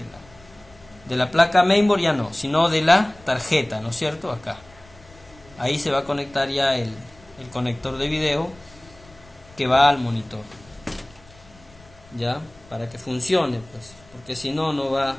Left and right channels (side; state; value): left; noise; rumble, 25 dB below the sound